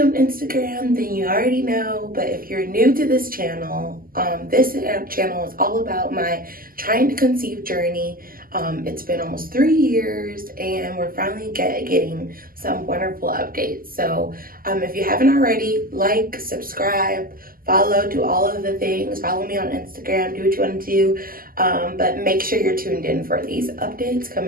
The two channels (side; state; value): left; late; 0.42 ms